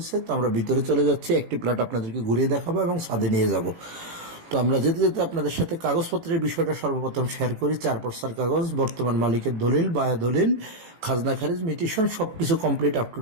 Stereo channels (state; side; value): late; left; 18 ms